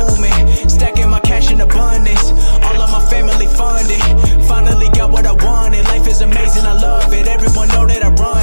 Stacking my cash in abundance. All of my family funded. Finally got what I wanted. Life is amazing, I love it. Everyone know that I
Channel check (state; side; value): inverted; both; correlation -1.00